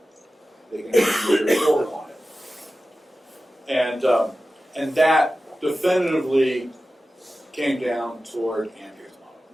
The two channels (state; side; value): normal; both; correlation 0.94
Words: they can measure forward on it. And that definitively came down toward Ampere's model.